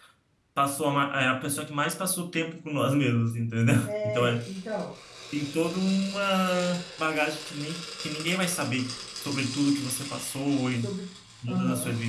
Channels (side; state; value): both; identical; correlation 1.00